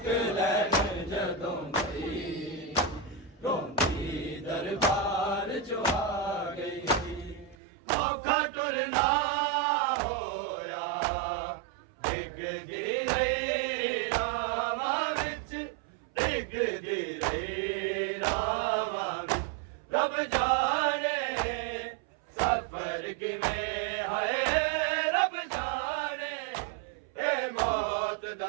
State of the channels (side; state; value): left; drops out; at 7.6 s